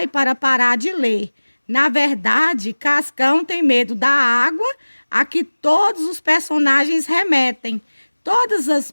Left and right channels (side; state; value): both; inverted; correlation -1.00